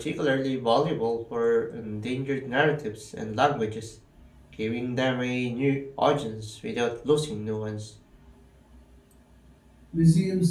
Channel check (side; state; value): both; identical; correlation 1.00